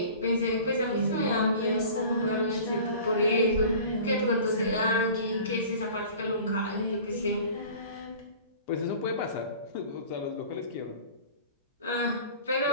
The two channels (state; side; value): inverted; both; correlation -0.42